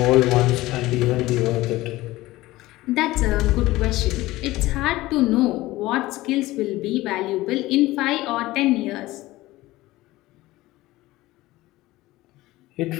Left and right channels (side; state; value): right; quieter; 18.1 dB